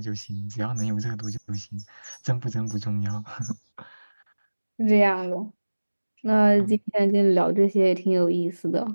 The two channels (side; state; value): both; inverted; correlation -1.00